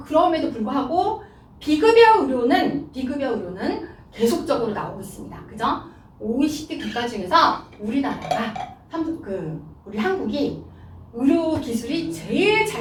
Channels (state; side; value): identical; both; correlation 1.00